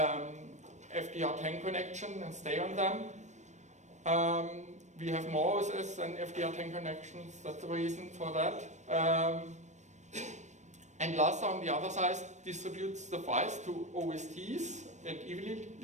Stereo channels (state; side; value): late; left; 0.34 ms